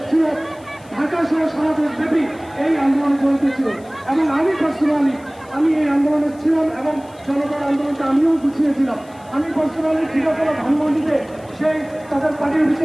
ছিল ঢাকা সহ সারা দেশব্যাপী এই আন্দোলন জড়িত ছিল, এবং আমি পার্সোনালি আমি এই আন্দোলনে ছিলাম এবং জনতার আন্দোলনটা আমিও গুছিয়েছিলাম। আমি পার্সোনালি ঠিকাতলা ধানমন্ডিতে সেই তাদের পার্টি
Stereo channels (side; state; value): left; noise; hiss, 28 dB below the sound